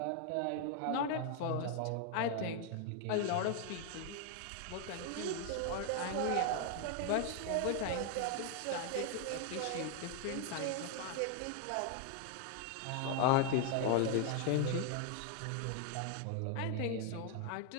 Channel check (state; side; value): different; both; correlation 0.00